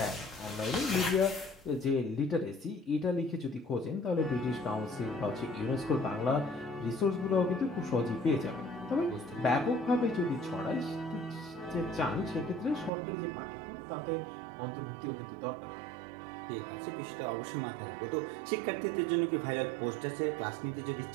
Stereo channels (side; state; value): left; drops out; at 12.9 s